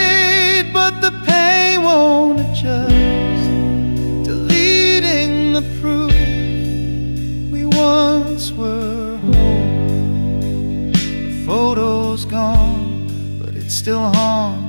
but the pain won't adjust, deleting the proof we once were whole. The photo's gone, but it still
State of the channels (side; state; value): both; inverted; correlation -1.00